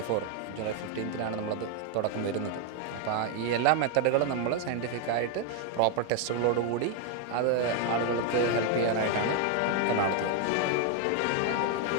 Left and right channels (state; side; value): different; both; correlation 0.01